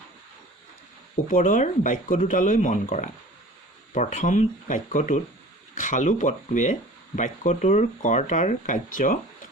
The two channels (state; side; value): normal; both; correlation 0.43